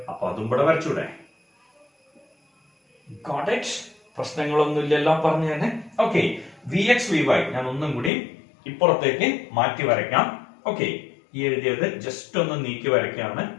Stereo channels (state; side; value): drops out; right; at 8.1 s